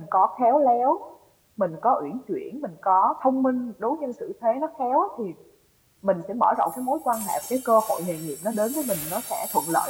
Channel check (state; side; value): identical; both; correlation 1.00